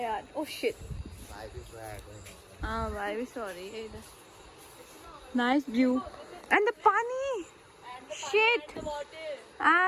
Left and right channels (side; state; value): both; identical; correlation 1.00